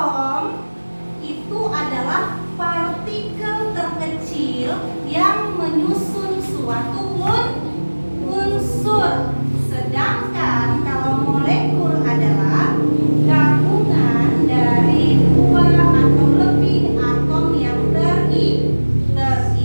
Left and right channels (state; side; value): inverted; both; correlation -1.00